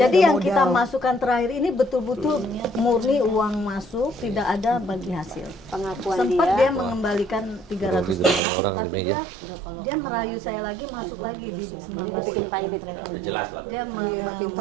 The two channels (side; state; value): left; drops out; at 8.4 s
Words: jadi ada yang kita modal. masukkan terakhir ini betul-betul murni uang masuk, tidak ada bagi hasil. Pengakuan Sempat dia. dia mengembalikan 300 juta, Orang tapi di meja. dia merayu saya lagi masuk lagi di 19. bikin pilot. Udah jelas lah. Dia